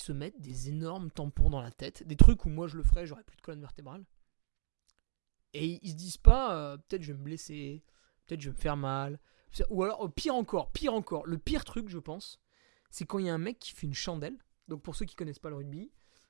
mettent des énormes tampons dans la tête, des trucs où moi je le ferais, j'aurais plus de colonne vertébrale. Et ils se disent pas, peut-être je vais me blesser, peut-être je vais me faire mal. Ou alors, pire encore, le pire truc, je pense, c'est quand il y a un mec qui fait une chandelle. Donc pour ceux qui connaissent pas le rugby,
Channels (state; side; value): silent; left; digital silence